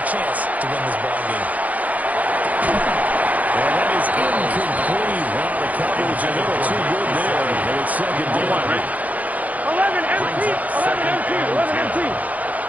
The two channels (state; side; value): late; left; 0.076 ms